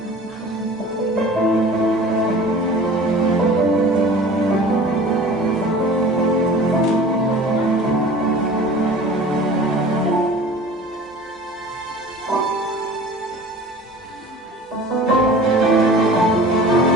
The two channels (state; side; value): normal; both; correlation 0.42